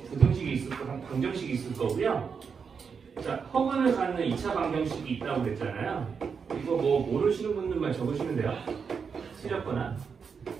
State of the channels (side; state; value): left; quieter; 6.0 dB